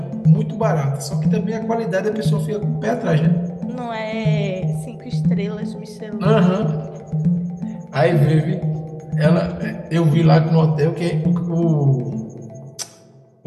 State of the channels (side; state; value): both; identical; correlation 1.00